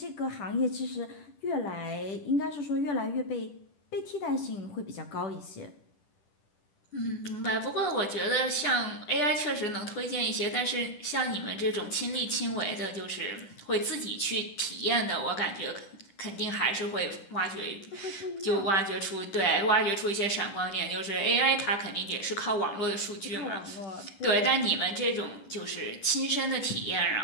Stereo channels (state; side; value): late; right; 10 ms